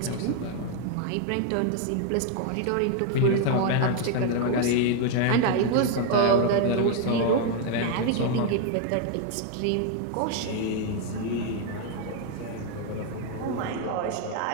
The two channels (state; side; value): different; both; correlation 0.01